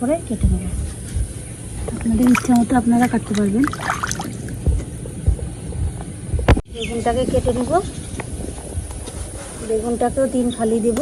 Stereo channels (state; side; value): identical; both; correlation 1.00